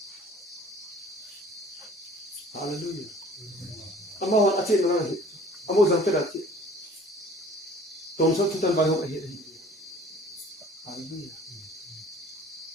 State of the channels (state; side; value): normal; both; correlation 0.50